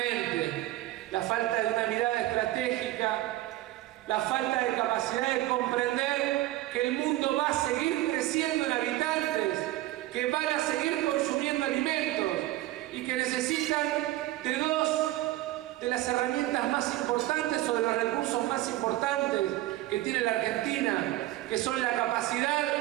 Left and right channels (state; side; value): quieter; left; 16.3 dB